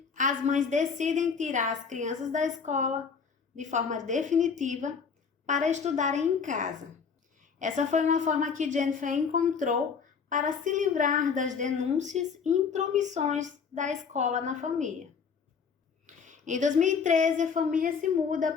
as mães decidem tirar as crianças da escola de forma definitiva para estudarem em casa. Essa foi uma forma que Jennifer encontrou para se livrar das denúncias e intromissões da escola na família. Em 2013, a família se muda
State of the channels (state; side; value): quieter; right; 6.0 dB